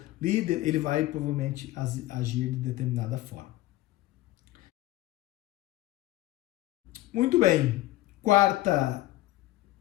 líder, ele vai provavelmente agir de determinada forma. Muito bem. Quarta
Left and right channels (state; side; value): quieter; right; 16.5 dB